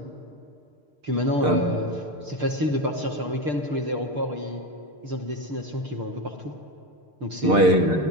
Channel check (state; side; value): late; left; 6.7 ms